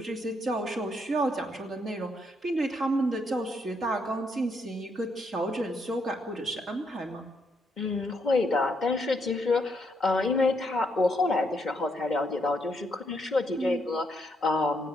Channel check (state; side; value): normal; both; correlation 0.75